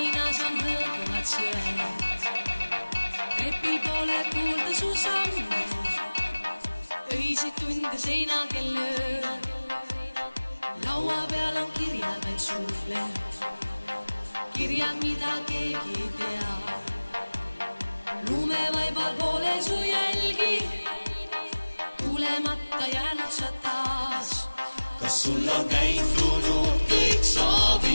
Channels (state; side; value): inverted; both; correlation -1.00